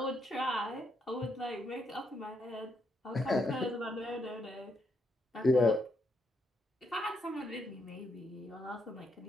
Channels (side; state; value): both; normal; correlation 0.78